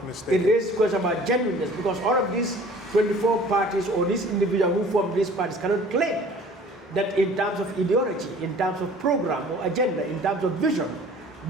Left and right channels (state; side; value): normal; both; correlation 0.49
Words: mistaken. It raises questions about genuineness, because all of these 24 parties or these individuals who form these parties cannot claim that in terms of ideology, in terms of program or agenda, in terms of vision,